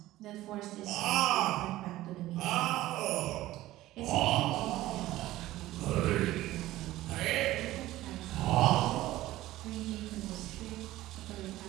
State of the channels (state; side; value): quieter; left; 16.1 dB